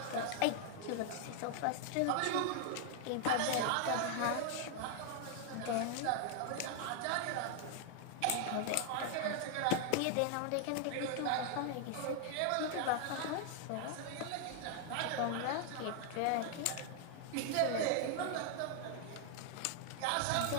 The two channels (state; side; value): different; both; correlation 0.00